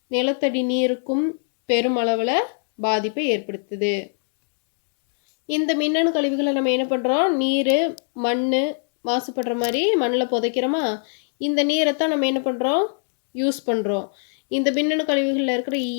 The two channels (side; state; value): right; silent; 64 dB below the other